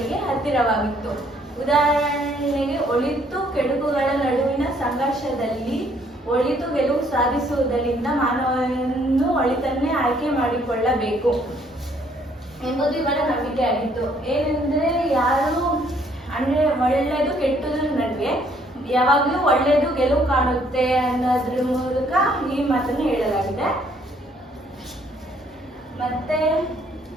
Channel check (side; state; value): both; normal; correlation 0.65